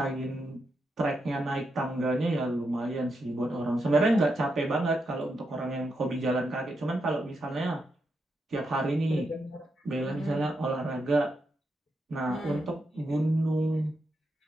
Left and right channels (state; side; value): normal; both; correlation 0.84